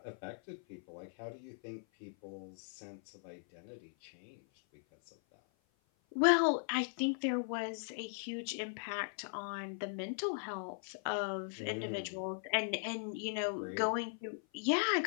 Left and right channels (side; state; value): right; silent; 52 dB below the other